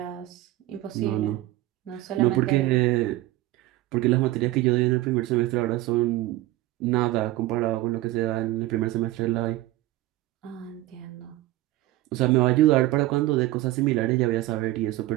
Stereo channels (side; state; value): left; quieter; 16.8 dB